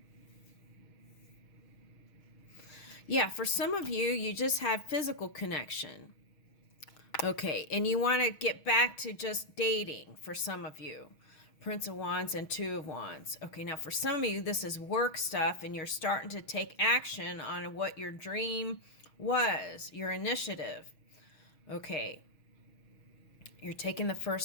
Yeah, for some of you, you just have physical connection. Okay, and you want to get back to just dating for some of you. Prince of Wands and Two of Wands. Okay, now for some of you, this is work stuff, and you're starting to take action on what your dream was, your initiative. Okay, you're taking the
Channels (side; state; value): right; late; 6.3 ms